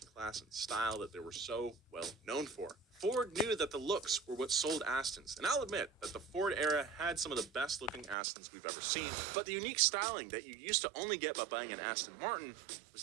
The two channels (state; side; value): drops out; left; at 8.2 s